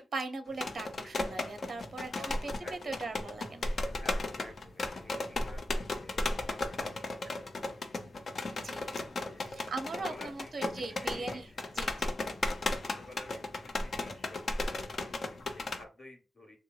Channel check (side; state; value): both; normal; correlation 0.89